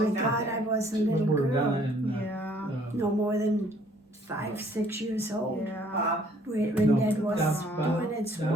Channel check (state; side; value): normal; both; correlation 0.61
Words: was down God, there? I was a When little we were down girl, in, Yeah. no more than 5, 6 years old, Yeah. Bob. when no, Dad was Bob, doing its Donna,